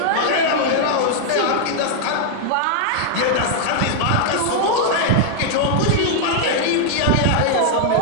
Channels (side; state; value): both; different; correlation 0.00